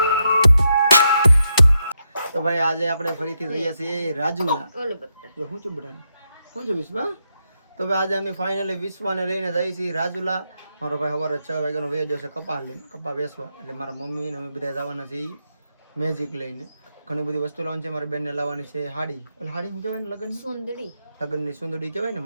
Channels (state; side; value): inverted; both; correlation -0.82